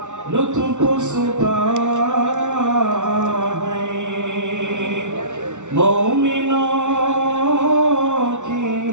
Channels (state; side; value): late; left; 0.85 ms